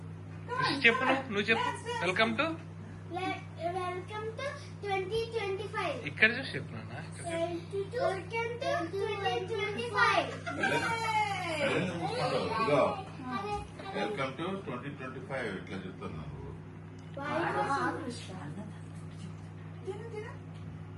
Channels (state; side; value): identical; both; correlation 1.00